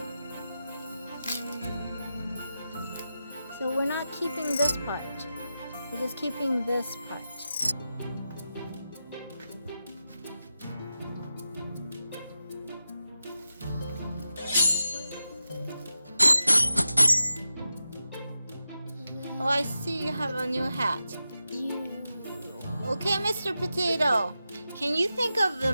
So we're not keeping this part. We're just keeping this part. Oh, I see you have a new hat. Okay, Mr. Potato. Can you think of the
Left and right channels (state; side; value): inverted; both; correlation -0.91